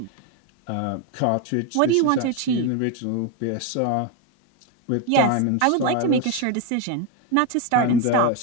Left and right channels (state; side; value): different; both; correlation 0.02